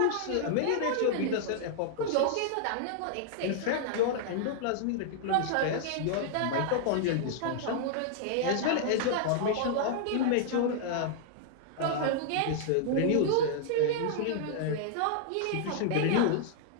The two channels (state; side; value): different; both; correlation -0.01